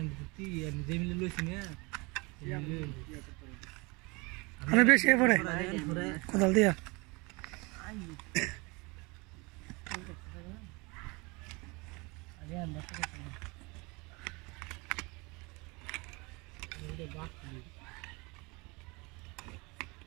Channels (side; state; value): left; quieter; 27.0 dB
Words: তুই যে মিলে লইছি না মানে বেশি পড়ে কোদাল দিয়া আগে আমরা এটা বাক